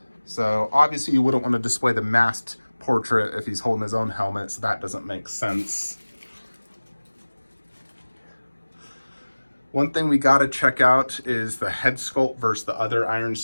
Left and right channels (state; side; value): inverted; both; correlation -1.00